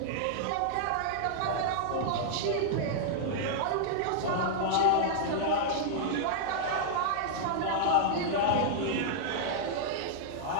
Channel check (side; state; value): both; different; correlation -0.01